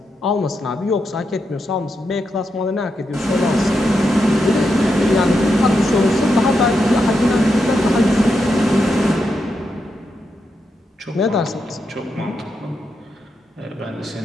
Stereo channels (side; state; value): both; normal; correlation 0.84